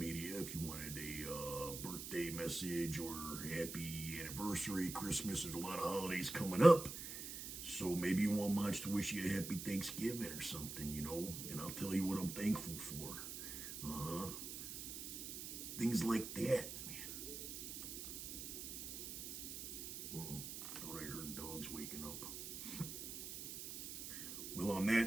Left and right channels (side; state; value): right; noise; hiss, 7 dB below the sound